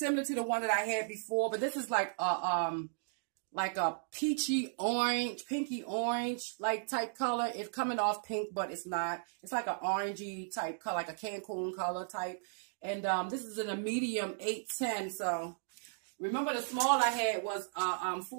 to the one that I had before, but this is like a peachy orange, pinky orange, like type color. It's coming off pink, but it's not. It's like an orangey type color, like a Cancun color type. And this is in a medium 8'10". So remember the small I had was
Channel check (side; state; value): left; silent; digital silence